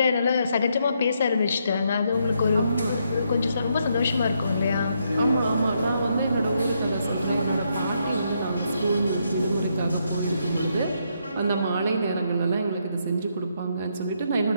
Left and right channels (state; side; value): inverted; both; correlation -0.77